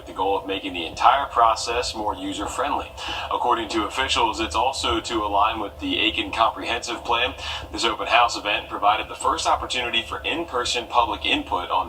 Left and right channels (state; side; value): identical; both; correlation 1.00